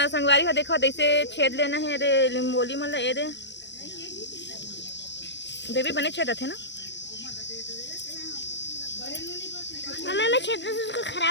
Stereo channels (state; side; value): late; right; 0.52 ms